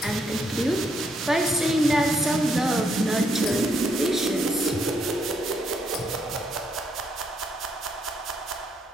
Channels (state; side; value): normal; both; correlation 0.75